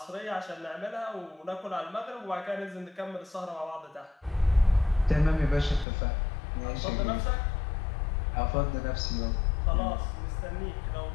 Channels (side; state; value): right; drops out; at 5.9 s